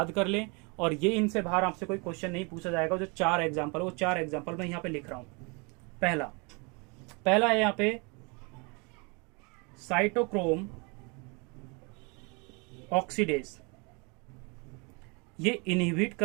कर लें और ये इनसे बाहर आपसे कोई क्वेश्चन नहीं पूछा जाएगा। जो 4 एग्जाम्पल है वो 4 एग्जाम्पल मैं यहाँ पे लिख रहा हूं। पहला है यहाँ पे साइटोक्रोम ऑक्सीडेज, ये इनहिबिट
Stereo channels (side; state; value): left; quieter; 30.9 dB